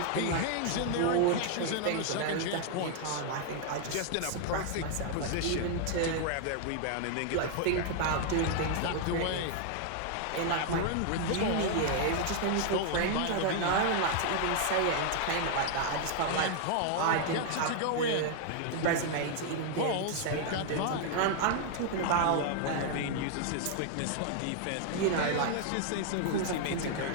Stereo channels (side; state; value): both; different; correlation 0.00